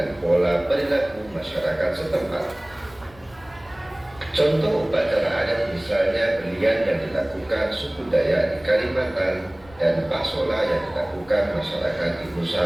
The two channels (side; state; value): left; noise; rumble, 24 dB below the sound